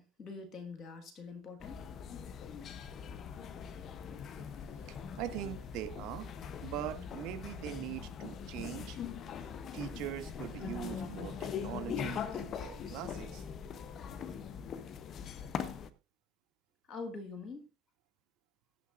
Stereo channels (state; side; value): normal; both; correlation 0.46